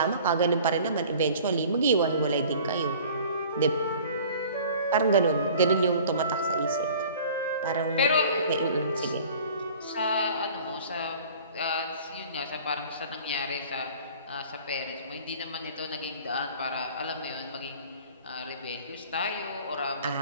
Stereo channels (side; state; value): both; inverted; correlation -0.47